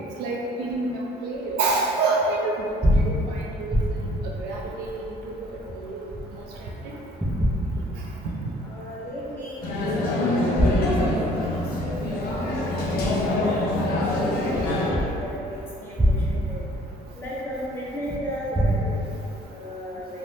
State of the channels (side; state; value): both; normal; correlation 0.57